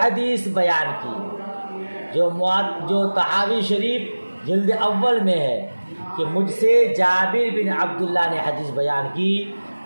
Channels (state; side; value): inverted; both; correlation -1.00